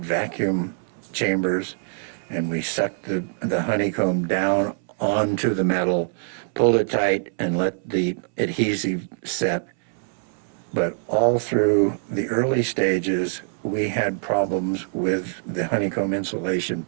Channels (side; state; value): left; silent; 63 dB below the other